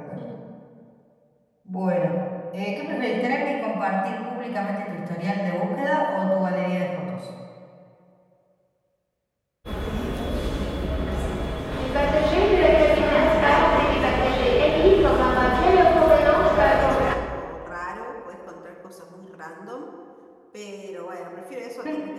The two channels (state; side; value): identical; both; correlation 1.00